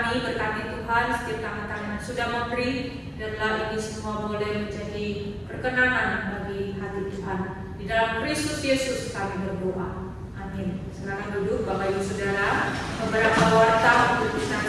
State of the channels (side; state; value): both; identical; correlation 1.00